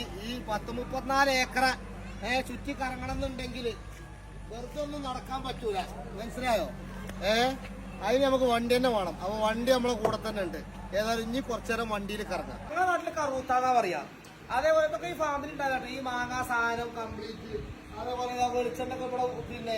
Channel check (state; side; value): identical; both; correlation 1.00